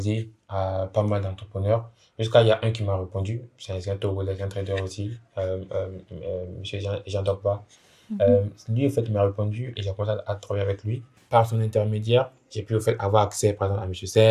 à pas mal d'entrepreneurs. Jusqu'à il y a un qui m'a répondu, c'est un Togolais, un trader aussi, monsieur Jean Dogba. Lui, en fait, il m'a répondu et j'ai commencé à travailler avec lui. Par son intermédiaire, j'ai pu, en fait, avoir accès, par exemple, à monsieur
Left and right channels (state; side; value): identical; both; correlation 1.00